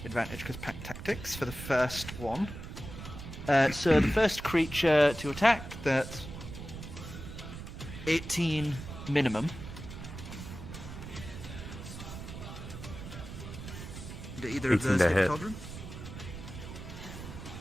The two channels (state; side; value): noise; right; rumble, 10 dB below the sound